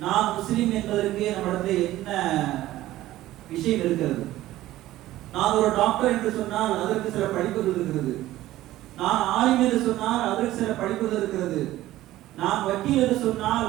நான் முஸ்லிம் என்பதற்கு நம்மிடத்தில் என்ன விஷயம் இருக்கிறது? நான் ஒரு டாக்டர் என்று சொன்னால் அதற்கு சில படிப்புகள் இருக்கிறது. நான் ஆலிம் என்று சொன்னால் அதற்கு சில படிப்புகள் இருக்கிறது. நான் வக்கீல் என்று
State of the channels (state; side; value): quieter; left; 15.3 dB